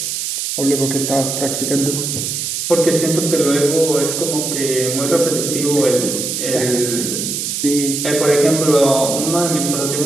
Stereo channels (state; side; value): noise; right; hiss, 3 dB below the sound